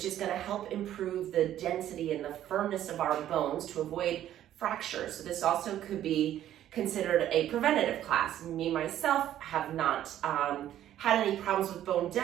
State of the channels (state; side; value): quieter; left; 11.9 dB